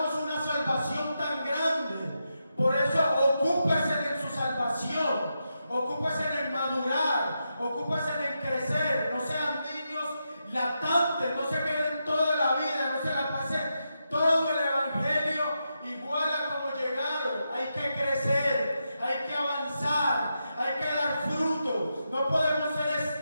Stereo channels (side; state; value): both; inverted; correlation -0.86